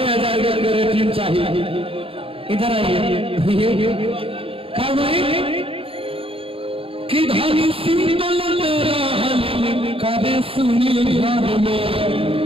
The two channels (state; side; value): late; left; 0.27 ms